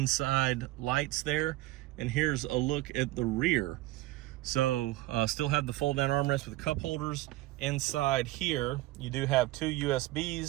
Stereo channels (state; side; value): quieter; left; 18.0 dB